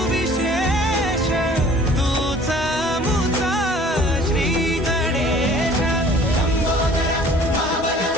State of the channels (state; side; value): normal; both; correlation 0.51